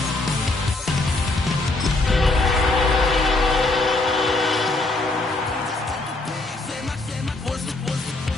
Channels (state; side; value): quieter; right; 3.0 dB